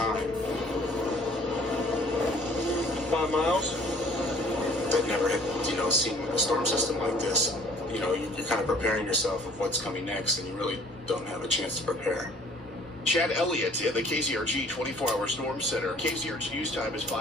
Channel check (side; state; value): both; normal; correlation 0.55